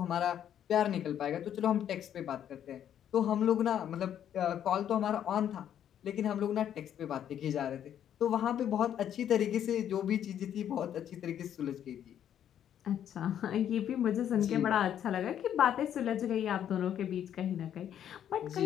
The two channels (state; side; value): quieter; right; 9.9 dB